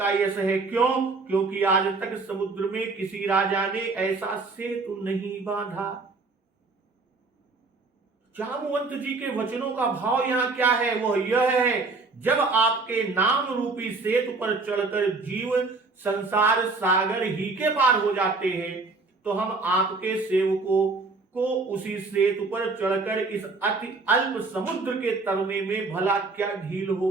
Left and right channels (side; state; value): left; quieter; 3.8 dB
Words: यश है। क्यों? क्योंकि आज तक समुद्र में किसी राजा ने ऐसा सेतु नहीं बांधा। जामवंत जी के वचनों का भाव यहां क्या है? वो यह है, जब आपके नाम रूपी सेतु पर चढ़कर जीव संसार सागर ही के पार हो जाते हैं, तो हम आपके सेवकों को उसी सेतु पर चढ़कर इस अति अल्प समुद्र के तरने में भला क्या ढील